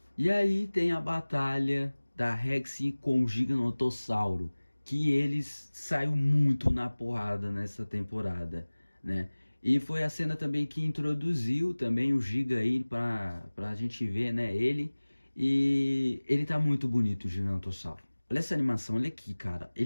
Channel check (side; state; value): both; inverted; correlation -1.00